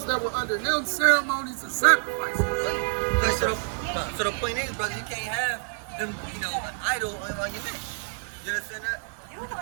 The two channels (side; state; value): left; silent; 60 dB below the other